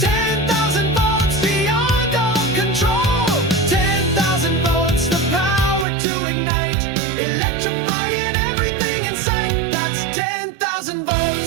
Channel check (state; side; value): drops out; left; at 5.9 s